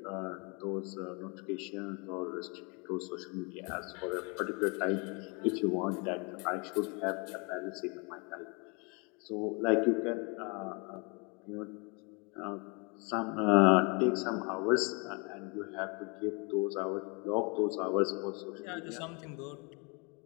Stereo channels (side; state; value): right; quieter; 32.0 dB